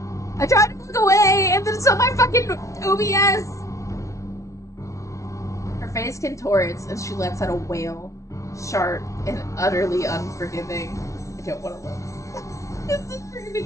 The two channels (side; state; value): right; late; 0.15 ms